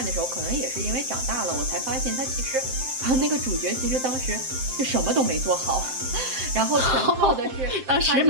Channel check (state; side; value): late; left; 7.7 ms